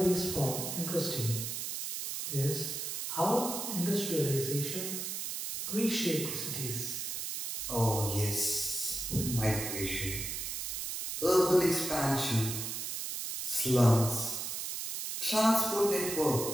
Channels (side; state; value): right; noise; hiss, 4 dB below the sound